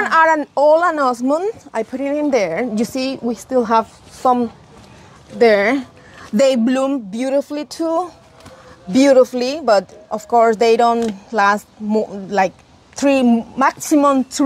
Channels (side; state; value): both; identical; correlation 1.00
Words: are all an osmond. I put it in there. You see, we still have some there. They bloom beautifully too, but of course they don't last like maximum